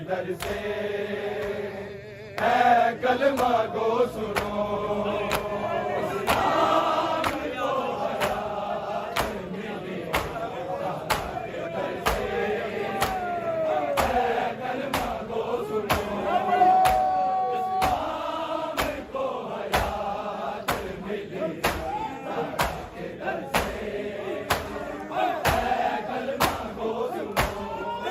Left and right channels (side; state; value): both; identical; correlation 1.00